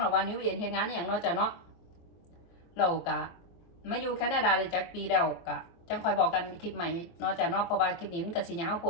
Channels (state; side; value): late; right; 24 ms